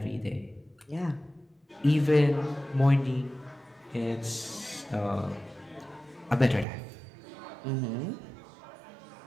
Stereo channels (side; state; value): left; drops out; at 6.7 s